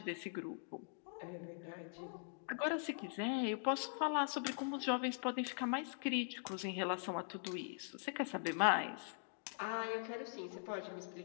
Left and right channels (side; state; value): right; silent; digital silence